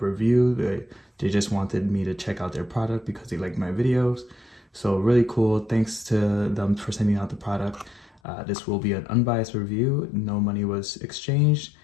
They just wanted me to check out their product because they like my videos. So really cool. Thanks to them for sending out the product. This will be an unbiased review. No money was exchanged.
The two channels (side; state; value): right; drops out; at 8.2 s